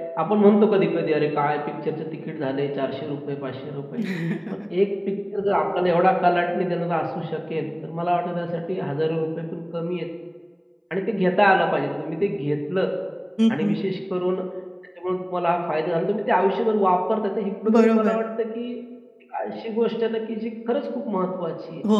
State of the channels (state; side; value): identical; both; correlation 1.00